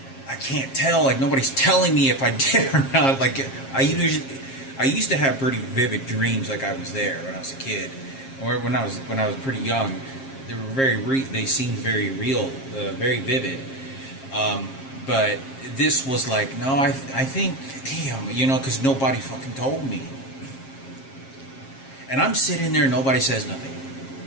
I can't tell, like, nobody's telling me if I did or not. Like, I used to have pretty vivid dreams, like I was there when I was a kid, or when I was pretty young. They seemed very real, very vivid. But this was like, no, I think, damn, you know, because nobody fucking told me. And I'm sitting there, nobody says nothing.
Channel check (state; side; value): late; right; 7.5 ms